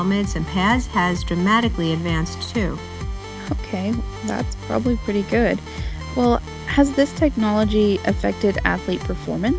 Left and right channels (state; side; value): identical; both; correlation 1.00